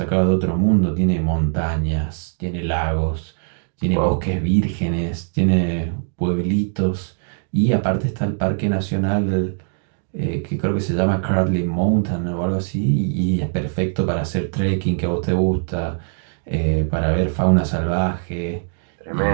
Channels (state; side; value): silent; left; digital silence